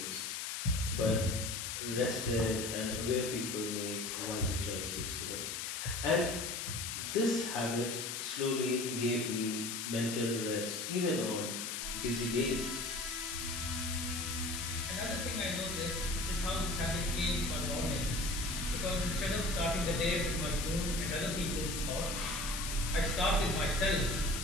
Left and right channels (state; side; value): noise; left; hiss, 3 dB below the sound